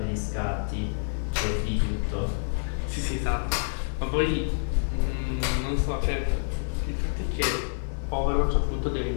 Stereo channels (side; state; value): right; silent; digital silence